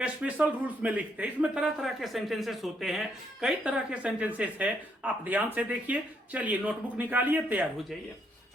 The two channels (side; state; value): both; normal; correlation 0.74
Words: स्पेशल रूल्स में लिखते हैं। इसमें तरह तरह के सेंटेंसेस होते हैं, कई तरह के सेंटेंसेस है, आप ध्यान से देखिए। चलिए नोटबुक निकालिए, तैयार हो जाइए,